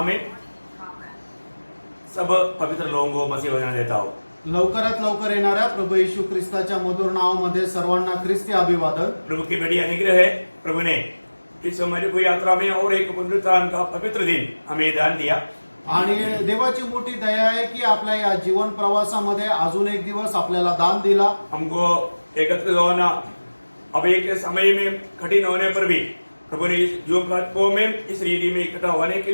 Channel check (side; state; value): both; inverted; correlation -1.00